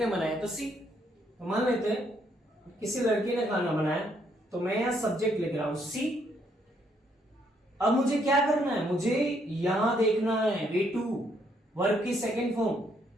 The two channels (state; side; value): normal; both; correlation 0.71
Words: बनाया तो सी। तो मान लेते हैं किसी लड़की ने खाना बनाया, तो मैं यहां सब्जेक्ट लिख रहा हूं सी। अब मुझे क्या करना है? मुझे यहां देखना है V2 वर्ब की सेकंड फॉर्म।